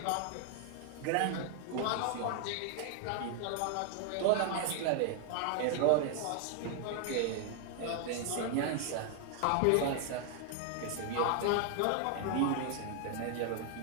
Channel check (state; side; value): different; both; correlation 0.00